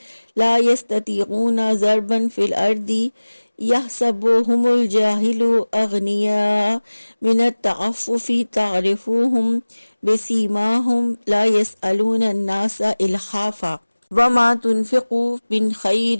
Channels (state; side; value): inverted; both; correlation -1.00